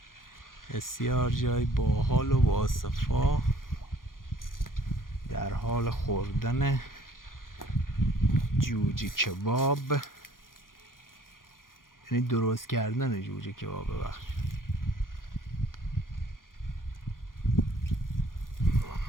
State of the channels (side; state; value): right; late; 0.90 ms